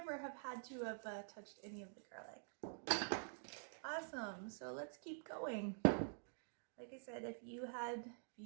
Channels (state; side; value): silent; left; digital silence